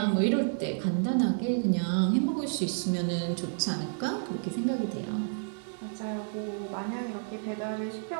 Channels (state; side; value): silent; left; digital silence